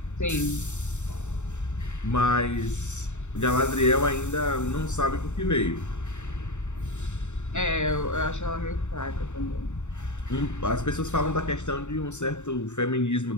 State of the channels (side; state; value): right; late; 0.84 ms